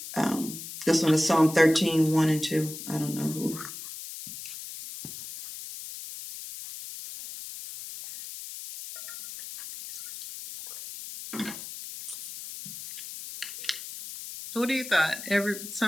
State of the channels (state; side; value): noise; left; hiss, 11 dB below the sound